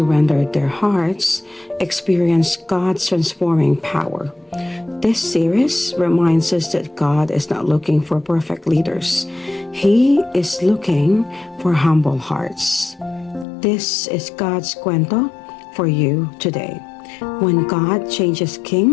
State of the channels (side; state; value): right; drops out; at 13.5 s